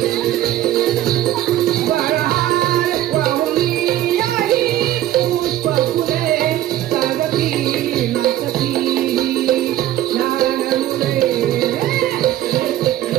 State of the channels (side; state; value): left; quieter; 13.2 dB